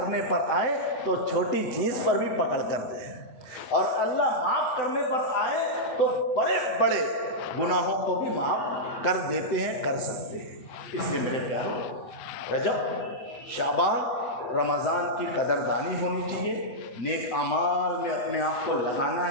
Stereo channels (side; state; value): right; late; 7.8 ms